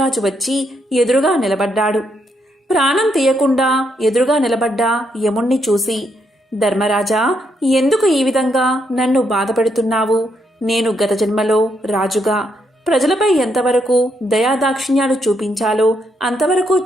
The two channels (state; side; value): normal; both; correlation 0.77